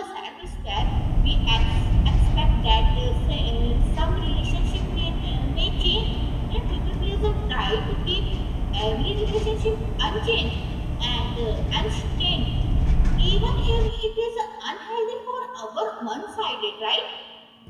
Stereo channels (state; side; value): identical; both; correlation 1.00